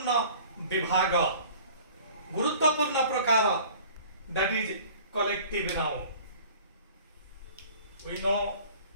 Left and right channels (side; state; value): both; inverted; correlation -0.46